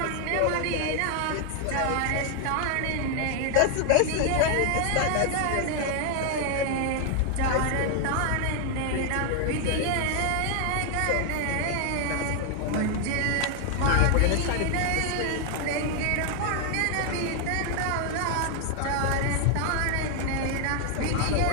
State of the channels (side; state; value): both; different; correlation 0.00